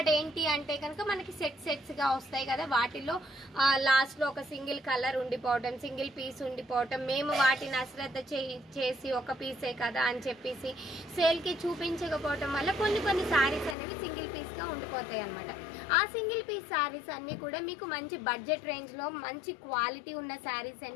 ఏంటి అంటే కనుక మనకి సెట్స్ గా వస్తాయి కదా, వాటిలో లాస్ట్ లో ఒక సింగిల్ కలర్ ఉండిపోవటం, సింగిల్ పీస్ ఉండిపోవటం, మేము వాటిని అశ్రద్ధ చేసి ఒక పీసే కదా అని చెప్పేసి సేల్ కి చూపించకపోవటం వల్ల కొన్ని శారీస్ అనేవి సింగిల్ పీస్ గా ఉండిపోతాయి అనమాట. ఆ సింగిల్ పీస్ శారీస్ అన్ని కూడా మీకు మంచి బడ్జెట్ రేంజ్ లో మంచి క్వాలిటీ ఉన్న శారీస్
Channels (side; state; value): right; drops out; at 13.8 s